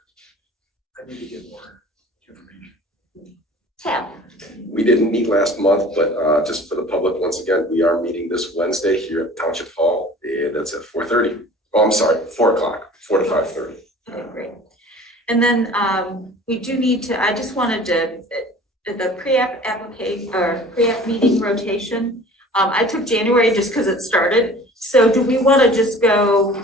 I need to get more information. Tab. We didn't meet last month, but just for the public, once again, we are meeting this Wednesday here at Township Hall, and that's at 4:30. Oh, I'm sorry, 4 o'clock, 4 to 5:30. Okay, great. And then we do need to, I just wanted to, the pre-app application or pre-app meeting rotation. I took January just because it started. So do we want to just go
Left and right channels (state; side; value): normal; both; correlation 0.45